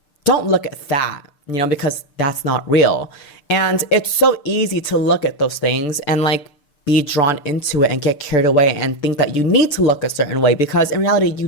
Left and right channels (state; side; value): late; right; 6.8 ms